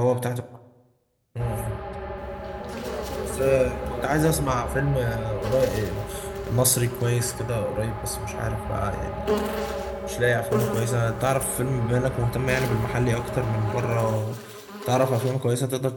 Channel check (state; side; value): identical; both; correlation 1.00